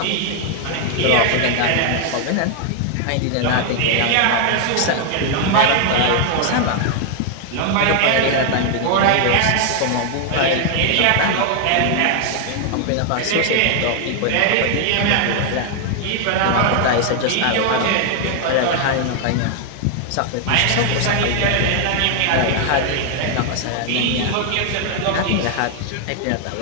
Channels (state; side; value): different; both; correlation 0.00